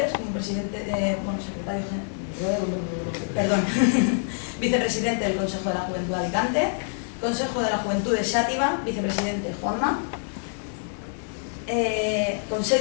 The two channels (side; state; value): right; silent; digital silence